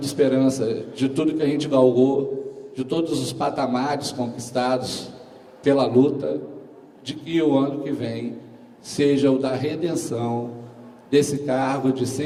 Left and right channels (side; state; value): both; identical; correlation 1.00